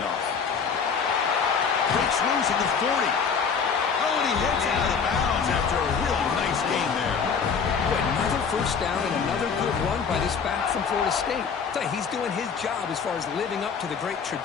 Breaks loose at the 40. Oh, and he hits out of bounds after a real nice gain there. Boy, another first down and another good run by this back from Florida State. He's doing his job as far as living up to the great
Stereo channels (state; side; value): quieter; right; 6.1 dB